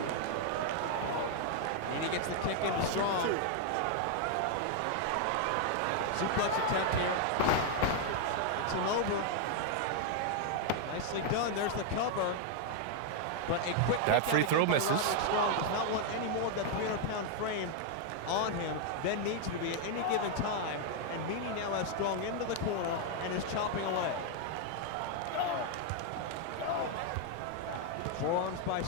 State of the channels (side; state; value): both; different; correlation 0.00